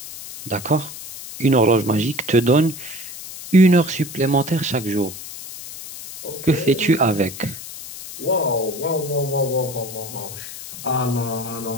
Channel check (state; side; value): noise; left; hiss, 12 dB below the sound